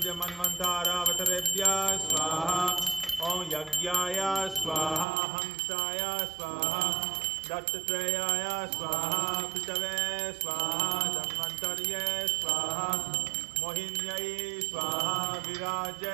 मन्वन्तरावतारेभ्यः स्वाहा ओम यज्ञाय स्वाहा हंसाय स्वाहा दत्तात्रेयाय स्वाहा पितवे स्वाहा धन्वन्तर्ये स्वाहा मोहिन्यै स्वाहा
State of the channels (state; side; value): drops out; left; at 5.1 s